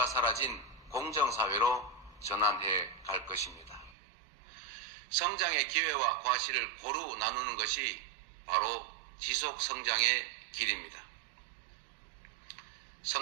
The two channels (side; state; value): left; drops out; at 4.0 s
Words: 사라진 공정사회로 전환해 갈 것입니다. 성장의 기회와 과실을 고루 나누는 것이 바로 지속 성장의 길입니다.